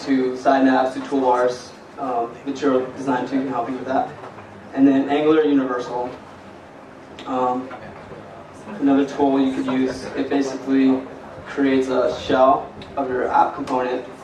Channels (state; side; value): identical; both; correlation 1.00